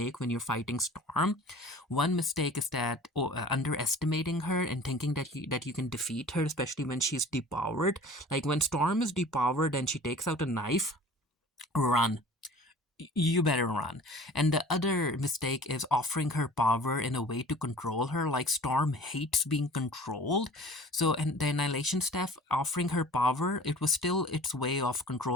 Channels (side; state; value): both; normal; correlation 0.45